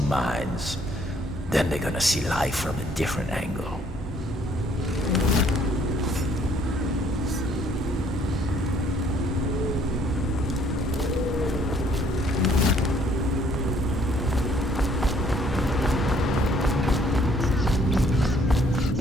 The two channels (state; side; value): normal; both; correlation 0.63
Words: mines. Then they're gonna see life from a different angle.